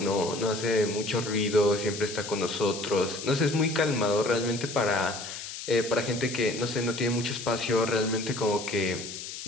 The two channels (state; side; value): noise; left; hiss, 9 dB below the sound